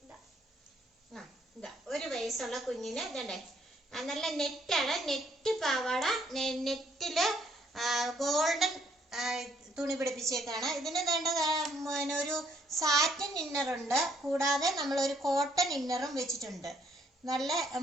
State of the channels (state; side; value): normal; both; correlation 0.67